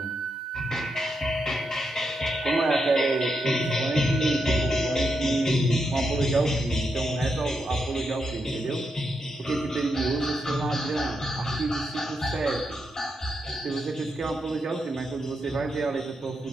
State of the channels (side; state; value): both; normal; correlation 0.83